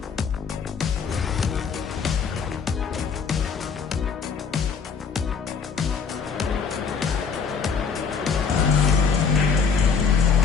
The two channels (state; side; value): quieter; right; 5.9 dB